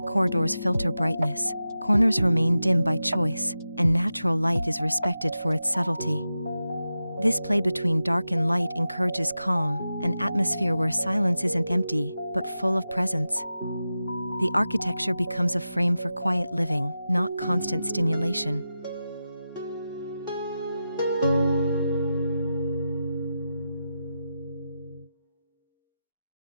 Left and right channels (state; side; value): inverted; both; correlation -0.92